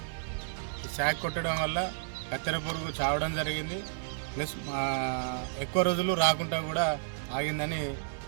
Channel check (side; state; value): left; silent; digital silence